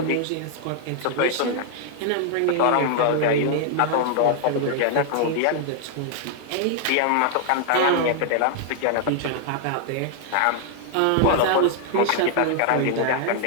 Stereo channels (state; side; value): different; both; correlation 0.00